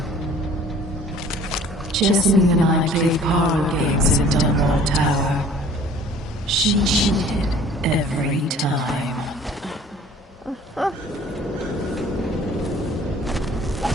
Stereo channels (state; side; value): normal; both; correlation 0.51